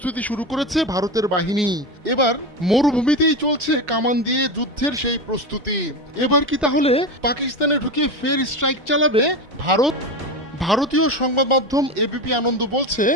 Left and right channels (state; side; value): normal; both; correlation 0.20